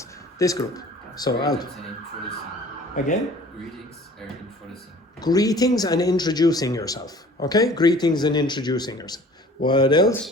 This group. So out. Greetings and introducing. Again? Greetings and introducing. Greetings and introducing yourself. Okay? Greetings and introducing yourself. What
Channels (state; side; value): normal; both; correlation 0.48